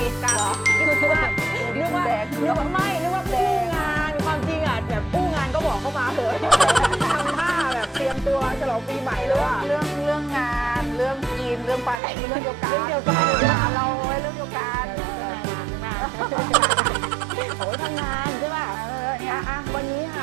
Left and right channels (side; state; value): left; drops out; at 12.0 s